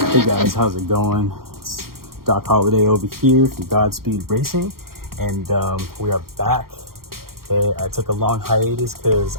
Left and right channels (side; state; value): left; late; 0.93 ms